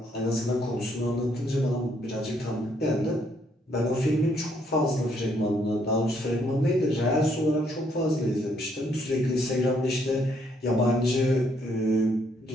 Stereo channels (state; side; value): normal; both; correlation 0.70